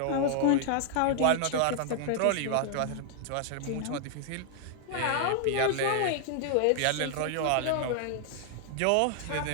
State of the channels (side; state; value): both; different; correlation 0.00